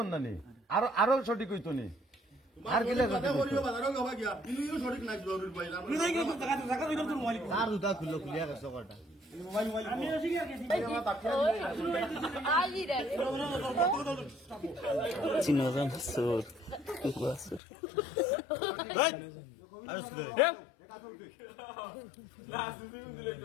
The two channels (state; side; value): drops out; right; at 17.6 s